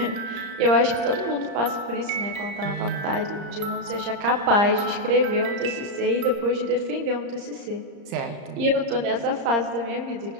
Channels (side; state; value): left; late; 34 ms